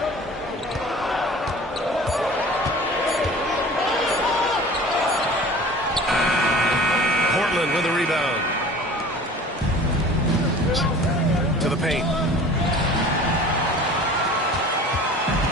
Portland with a rebound. To the paint.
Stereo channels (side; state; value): both; normal; correlation 0.43